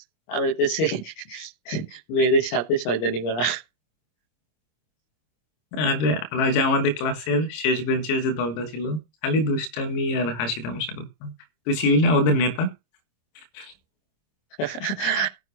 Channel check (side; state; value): right; late; 26 ms